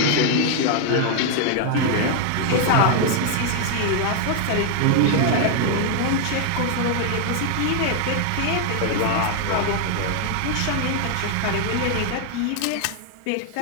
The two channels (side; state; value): both; different; correlation 0.00